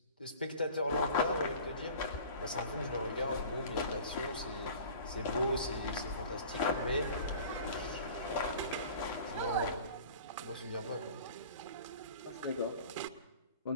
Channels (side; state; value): both; inverted; correlation -0.43